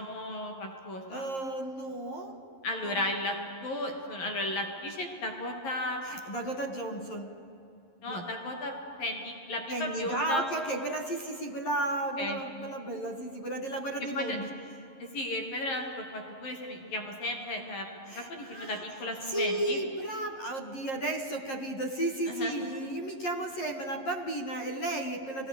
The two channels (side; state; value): right; late; 11 ms